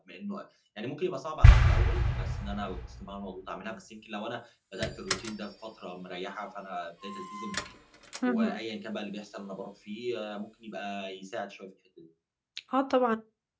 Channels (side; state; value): both; identical; correlation 1.00